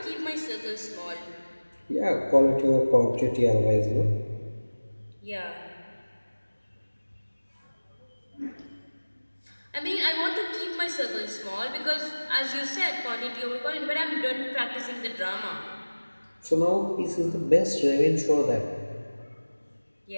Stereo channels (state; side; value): inverted; both; correlation -1.00